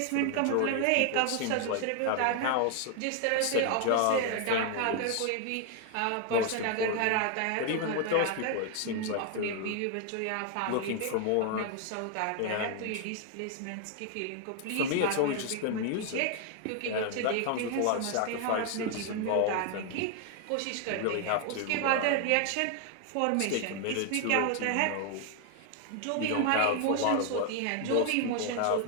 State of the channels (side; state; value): both; different; correlation 0.00